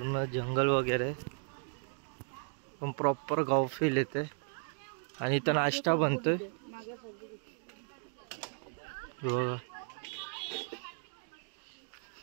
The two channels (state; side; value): silent; left; 54 dB below the other